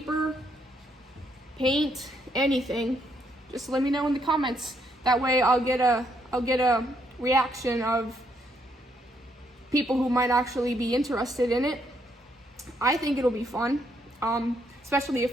paint, anything, just let me know in the comments. That way I'll get a reaction of people who might actually be interested in it. I think it'll be fun, especially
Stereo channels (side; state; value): both; normal; correlation 0.74